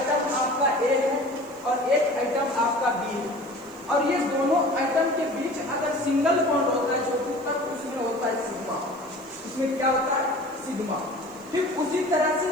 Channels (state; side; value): noise; right; hiss, 26 dB below the sound